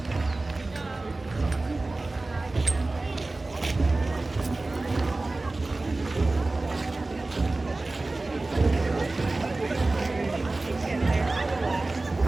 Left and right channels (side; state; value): left; quieter; 3.1 dB